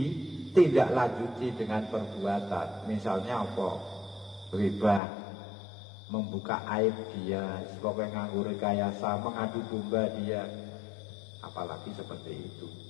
dengan perbuatan. Misalnya apa? Riba, membuka aib dia, sebagai nganggur rekayasa, mengadu domba dia, apalagi seperti itu.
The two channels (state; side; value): drops out; right; at 5.0 s